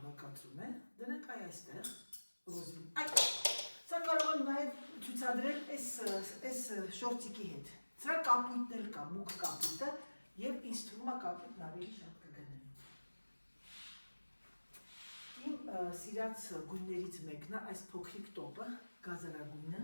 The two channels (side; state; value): both; inverted; correlation -1.00